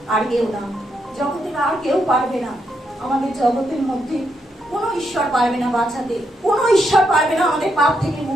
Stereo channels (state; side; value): normal; both; correlation 0.80